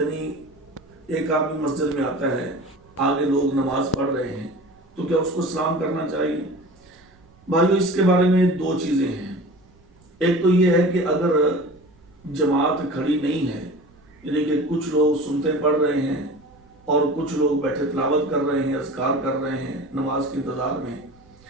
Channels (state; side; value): noise; right; rumble, 29 dB below the sound